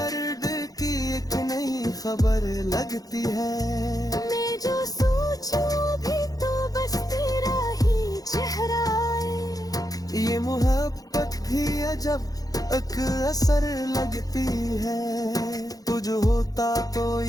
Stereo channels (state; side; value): late; right; 0.18 ms